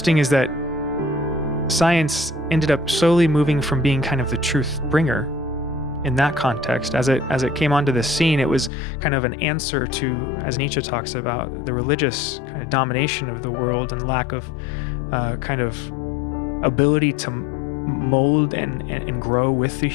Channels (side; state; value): right; drops out; at 8.7 s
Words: is that science ended up slowly moving from being kind of the truth bringer in that context. As it came onto the scene, it was kind of an answer to, as Nietzsche talks about, the religious kind of domination of the world and lack of kind of ability to mold and grow with the